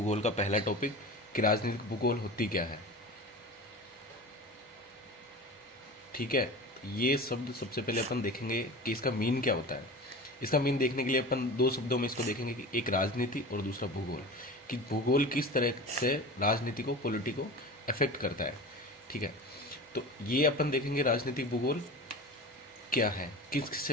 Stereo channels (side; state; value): both; normal; correlation 0.33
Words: का पहला टॉपिक कि राजनीतिक भूगोल होती क्या है। ठीक है, ये शब्द सबसे पहले अपन देखेंगे कि इसका मीन क्या होता है। इसका मीन देखने के लिए अपन दो शब्दों में इसको देखेंगे कि एक राजनीति और दूसरा भूगोल, कि भूगोल किस तरह से राजनीति को पॉलिटी को अफेक्ट करता है। ठीक है, तो ये अपन देखेंगे राजनीतिक भूगोल क्या है, किस किस